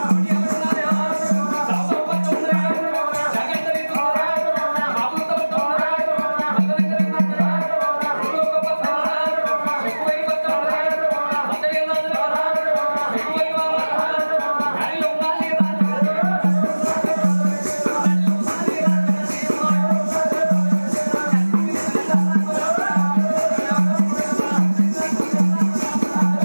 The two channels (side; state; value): both; inverted; correlation -1.00